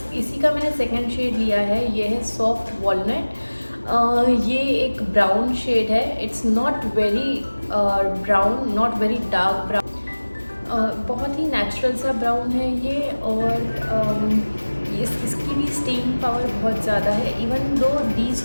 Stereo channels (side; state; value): both; inverted; correlation -1.00